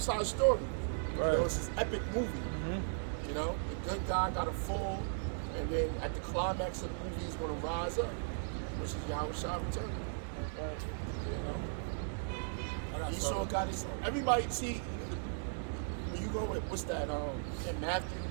High story. Right. You know, it's this epic movie. You know, the good guy got to fall, and then at the climax of the movie, he's going to rise up, which is Yahweh Shah return. You know, Esau got his. Everybody see when you go with what's that? In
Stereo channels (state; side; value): silent; left; digital silence